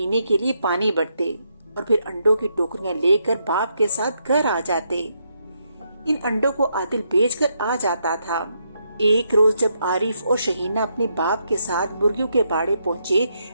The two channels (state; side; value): inverted; both; correlation -0.78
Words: کے لیے پانی بھرتے اور پھر انڈوں کی ٹوکریاں لے کر باپ کے ساتھ گھر آ جاتے۔ ان انڈوں کو عادل بیچ کر آ جاتا تھا۔ ایک روز جب عارف اور شہینہ اپنے باپ کے ساتھ مرغیوں کے باڑے پہنچے